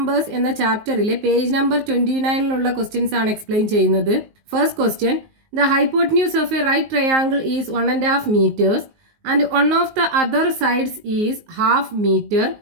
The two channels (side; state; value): left; late; 19 ms